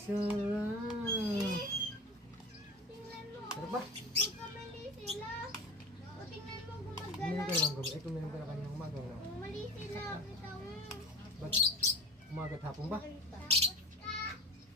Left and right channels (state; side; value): normal; both; correlation 0.32